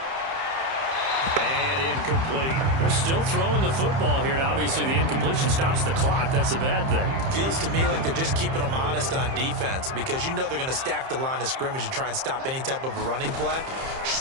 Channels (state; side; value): late; left; 30 ms